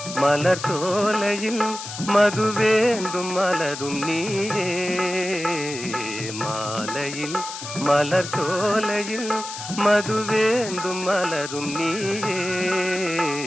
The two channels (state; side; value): noise; left; hiss, 9 dB below the sound